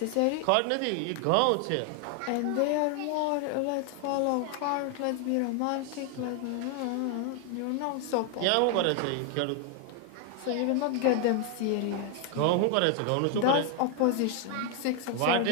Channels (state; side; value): different; both; correlation 0.00